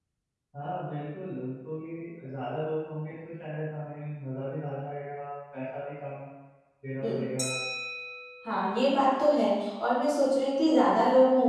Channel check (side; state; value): both; identical; correlation 1.00